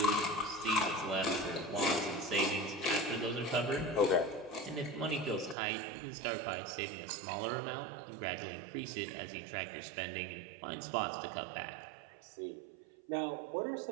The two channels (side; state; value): left; drops out; at 5.6 s